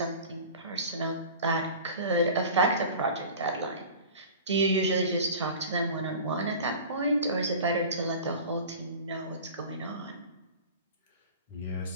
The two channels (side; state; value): both; inverted; correlation -0.39